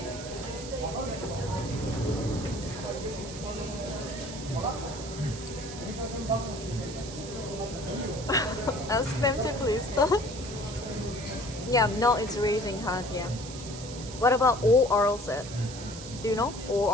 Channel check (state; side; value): noise; right; hiss, 12 dB below the sound